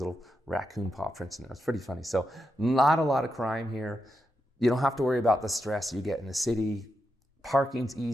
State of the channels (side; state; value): both; normal; correlation 0.86